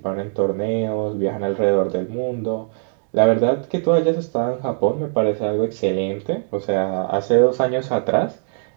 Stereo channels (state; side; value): silent; left; digital silence